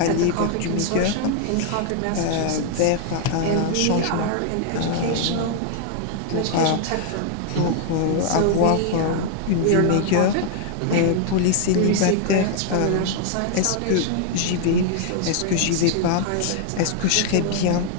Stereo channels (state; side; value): different; both; correlation 0.00